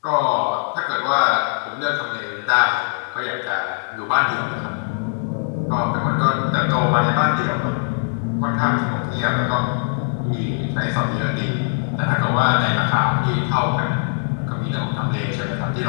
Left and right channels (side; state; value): right; silent; digital silence